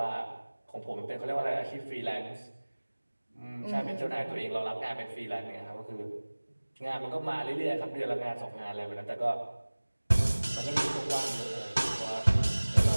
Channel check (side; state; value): both; inverted; correlation -1.00